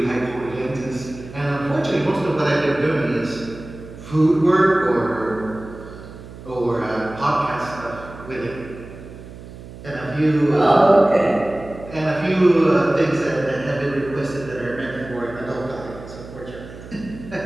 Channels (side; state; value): right; noise; hum, 15 dB below the sound